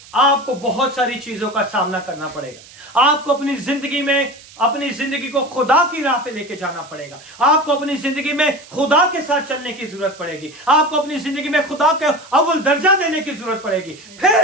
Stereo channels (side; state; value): right; noise; hiss, 21 dB below the sound